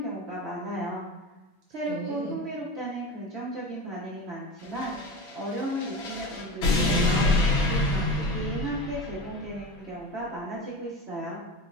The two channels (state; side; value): normal; both; correlation 0.28